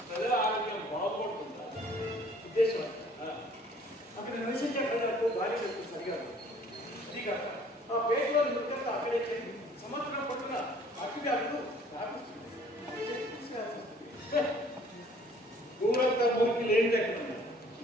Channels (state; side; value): normal; both; correlation 0.56